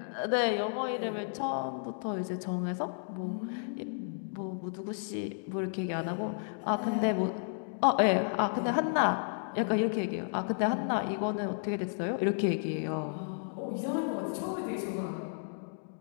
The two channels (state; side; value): silent; right; digital silence